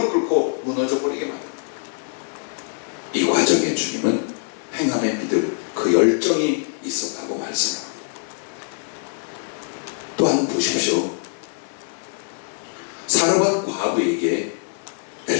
꿇고 무너져 버리게 만듭니다. 이 과정에 주님은 행함의 믿음, 그 열정이 있었다고 말씀합니다. 또한 보십시오. 사르밧 과부에게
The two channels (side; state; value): right; silent; digital silence